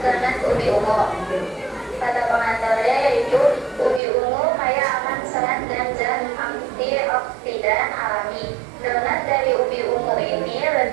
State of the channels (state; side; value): drops out; left; at 4.0 s